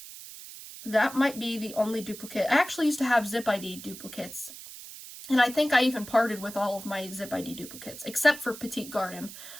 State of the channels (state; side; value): noise; right; hiss, 14 dB below the sound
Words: That might be the only duplicate. I actually used to have Zip ID duplicates. And I think I even parted with all of my Zip ID duplicates, except for Petite Garden.